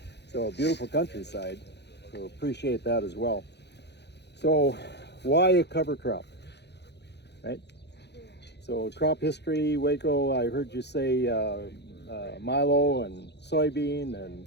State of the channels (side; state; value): right; late; 0.49 ms